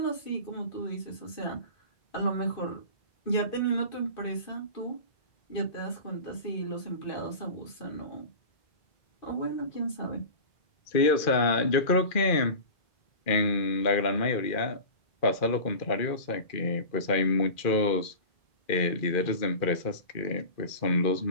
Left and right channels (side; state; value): right; late; 2.4 ms